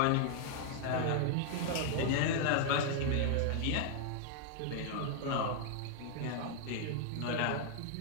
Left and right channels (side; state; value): both; different; correlation 0.00